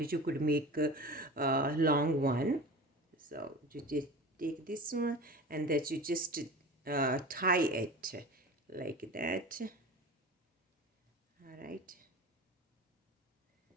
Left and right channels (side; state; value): both; normal; correlation 0.34